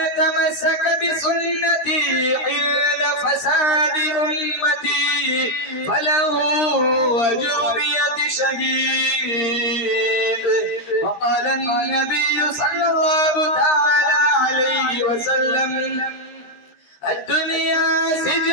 تمسك بسنتي عند فساد أمتي فله أجر 100 شهيد. وقال النبي صلى الله تعالى عليه وسلم: الدنيا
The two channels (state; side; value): late; right; 13 ms